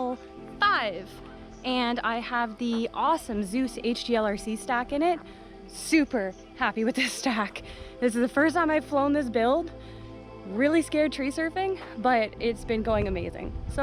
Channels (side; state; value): both; identical; correlation 1.00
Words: and I have the awesome Zeus HDLRC stack in it. Super happy with this stack. This is the first time I've flown this build. Really scared tree surfing, but it's been going amazing.